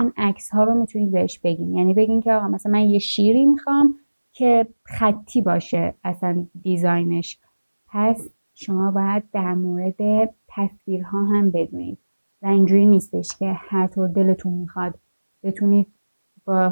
عکس ها رو میتونید بهش بگین. یعنی بگین که آقا مثلا من یه شیری میخوام که خطی باشه اصلا دیزاینش. پس شما باید در مورد تصویرها هم بدونید و اینجوری نیستش که هر طور دلتون میخواد بتونید با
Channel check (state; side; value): inverted; both; correlation -1.00